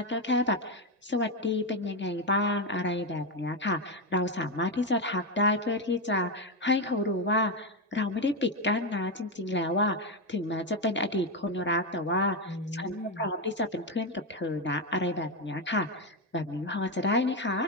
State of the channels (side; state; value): both; normal; correlation 0.08